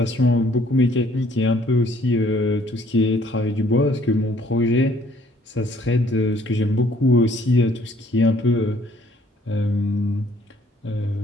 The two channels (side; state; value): both; normal; correlation 0.61